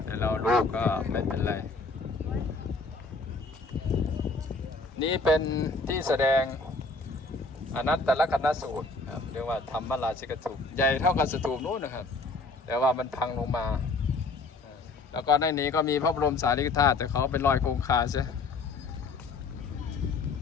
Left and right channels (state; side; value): quieter; right; 3.7 dB